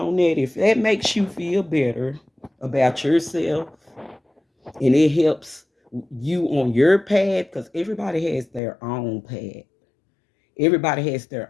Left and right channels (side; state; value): right; drops out; at 8.6 s